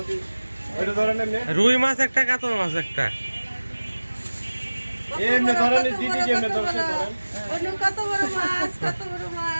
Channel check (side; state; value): both; inverted; correlation -1.00